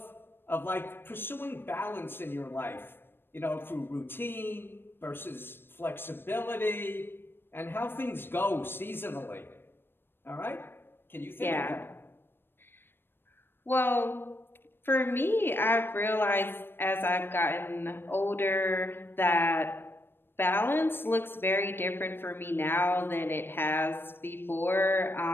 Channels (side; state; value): right; late; 0.10 ms